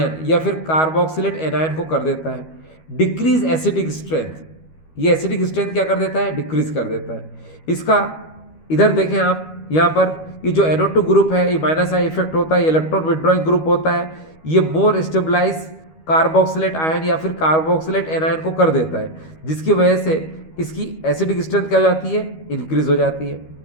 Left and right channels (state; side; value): late; right; 13 ms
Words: या फिर कार्बोक्सिलेट एनायन को कर देता है। डिक्रीज एसिडिक स्ट्रेंथ, ये एसिडिक स्ट्रेंथ क्या कर देता है, डिक्रीज कर देता है। इसका इधर देखें आप, यहाँ पर ये जो NO2 ग्रुप है ये माइनस आई इफेक्ट होता है, इलेक्ट्रॉन विड्रॉइंग ग्रुप होता है। ये मोर स्टेबलाइज कार्बोक्सिलेट आयन या फिर कार्बोक्सिलेट एनायन को कर देता है, जिसकी वजह से इसकी एसिडिक स्ट्रेंथ क्या हो जाती है, इंक्रीज हो जाती है।